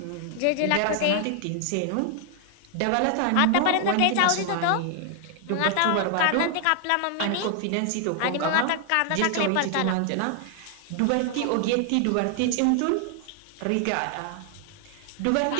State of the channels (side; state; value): both; different; correlation 0.00